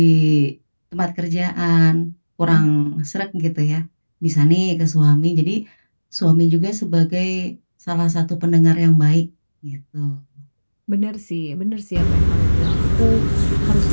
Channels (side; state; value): both; inverted; correlation -1.00